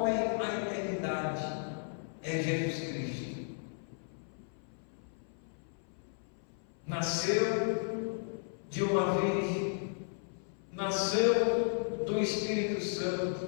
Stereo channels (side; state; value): right; silent; 55 dB below the other